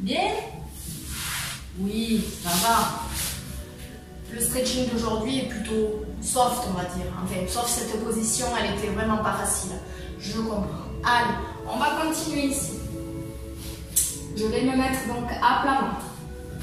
Oui, ça va. Le stretching d'aujourd'hui est plutôt soft, on va dire. Enfin, sauf cette position, elle était vraiment pas facile. Je comprends. Allez, on va continuer ici. Je vais me mettre donc à plat ventre.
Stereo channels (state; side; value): identical; both; correlation 1.00